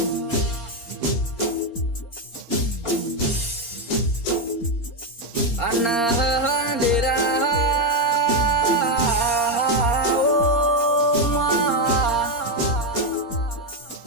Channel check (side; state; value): right; late; 4.3 ms